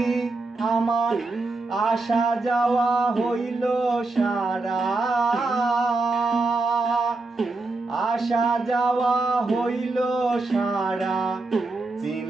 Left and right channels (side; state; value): left; quieter; 3.4 dB